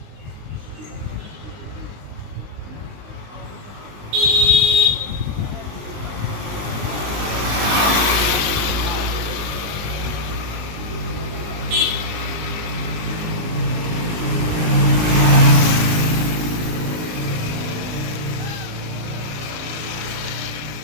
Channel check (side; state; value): left; late; 20 ms